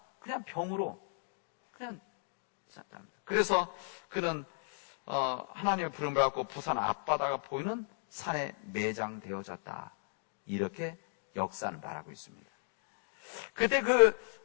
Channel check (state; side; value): silent; right; digital silence